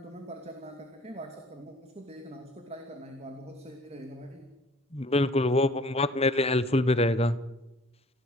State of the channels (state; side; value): normal; both; correlation 0.52